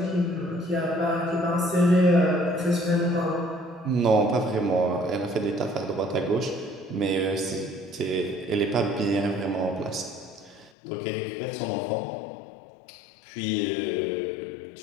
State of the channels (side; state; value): right; drops out; at 10.7 s